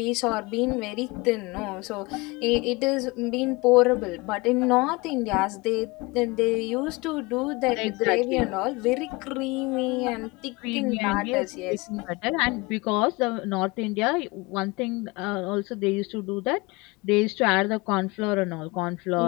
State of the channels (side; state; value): right; quieter; 24.7 dB